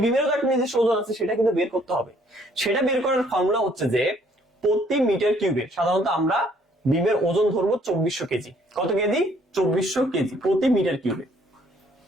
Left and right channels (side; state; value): both; normal; correlation 0.63